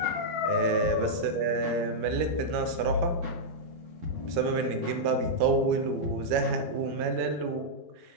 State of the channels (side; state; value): left; late; 13 ms